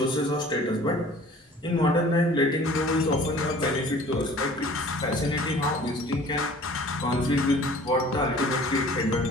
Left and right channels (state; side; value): normal; both; correlation 0.48